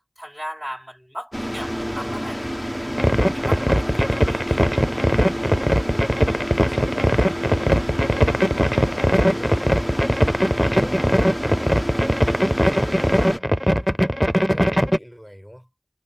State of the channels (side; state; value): both; identical; correlation 1.00